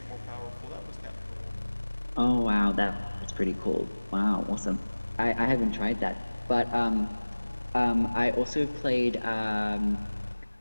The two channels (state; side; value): inverted; both; correlation -1.00